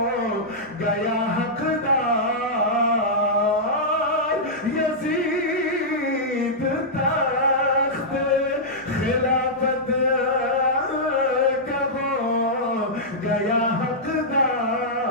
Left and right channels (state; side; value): normal; both; correlation -0.10